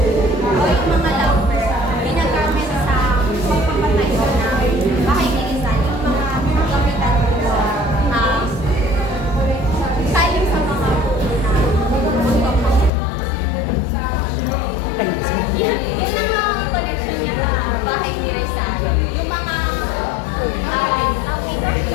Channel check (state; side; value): drops out; right; at 12.9 s